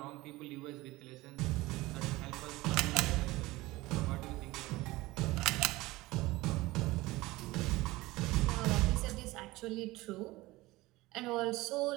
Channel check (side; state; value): left; quieter; 19.7 dB